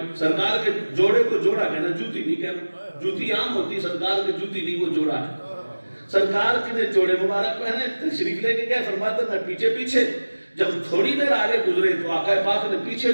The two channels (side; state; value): both; inverted; correlation -1.00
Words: سرکار کے جوڑے کو جوڑا کہنا, جوتی نہیں کہنا. جوتی عام ہوتی, سرکار کے جوتی نہیں, وہ جوڑا ہے. سرکار کے نے جوڑے مبارک پہنے, تشریف لے کے گئے. فرماتا میں پیچھے پیچھے. جب تھوڑی دیر آگے گزرے تو آقا پاک نے پیچھے